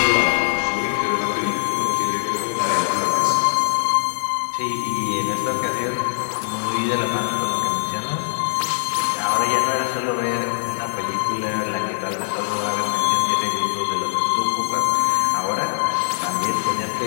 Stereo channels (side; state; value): right; silent; digital silence